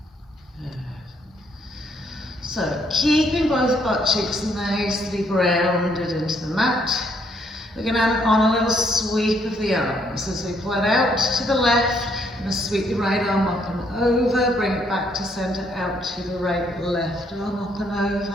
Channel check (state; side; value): normal; both; correlation 0.70